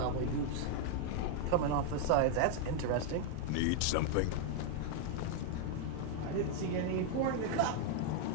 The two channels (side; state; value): both; different; correlation 0.00